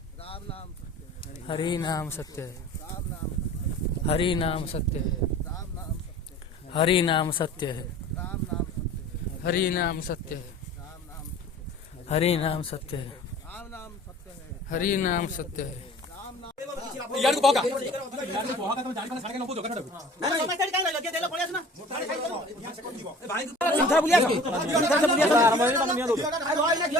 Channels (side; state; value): both; normal; correlation 0.44